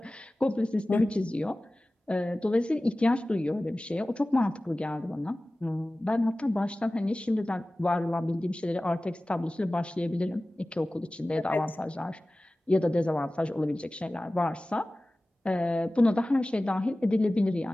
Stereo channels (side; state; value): both; normal; correlation 0.97